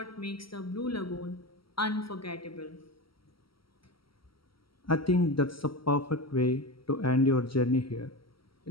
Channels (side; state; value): right; late; 0.75 ms